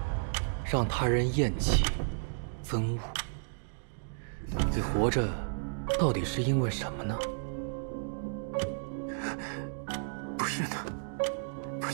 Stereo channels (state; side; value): silent; left; digital silence